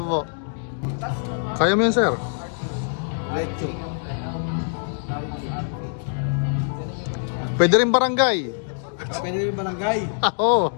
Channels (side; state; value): right; silent; digital silence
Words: Kaya mo yun, sir? Lecho. Pwede rin barangay. Pwede rin barangay. Oo.